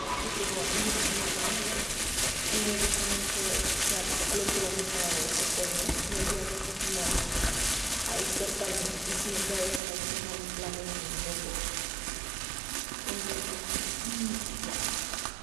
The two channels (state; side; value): drops out; left; at 9.8 s